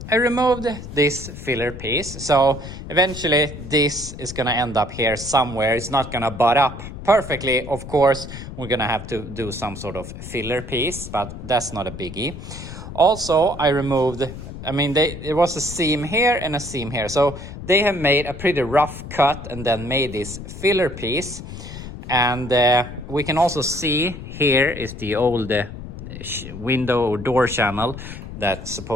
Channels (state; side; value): noise; left; rumble, 11 dB below the sound